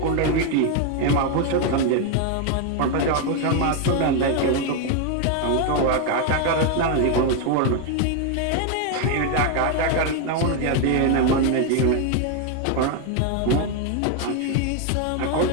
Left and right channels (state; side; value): different; both; correlation 0.01